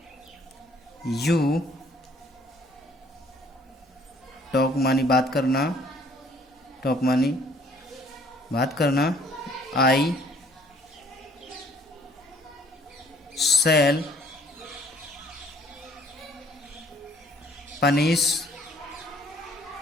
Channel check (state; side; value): normal; both; correlation 0.59